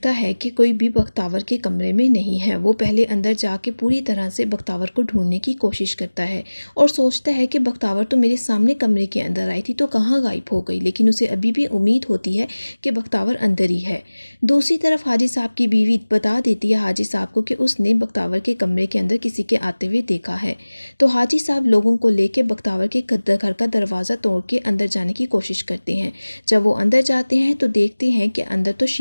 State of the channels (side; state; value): both; inverted; correlation -1.00